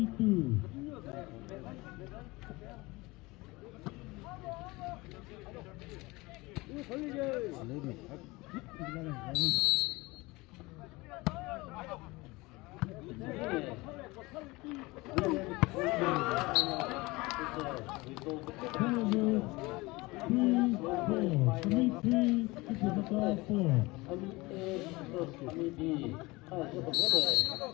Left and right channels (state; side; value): quieter; right; 22.6 dB